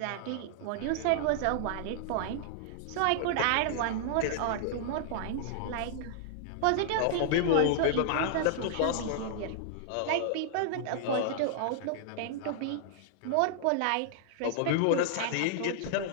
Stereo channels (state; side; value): different; both; correlation -0.01